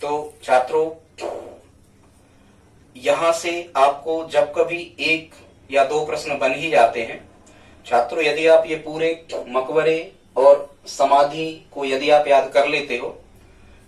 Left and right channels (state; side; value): identical; both; correlation 1.00